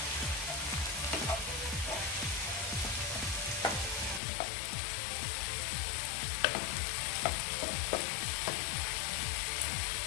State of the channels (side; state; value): right; drops out; at 4.2 s